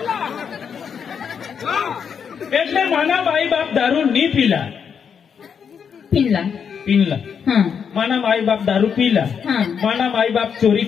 એટલે માના માઈ બાપ દારૂ ની પીલા पिनला પીનલા हा माना माई बाप दारू पीला हा माना माई बाप चोरी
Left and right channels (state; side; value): quieter; right; 7.0 dB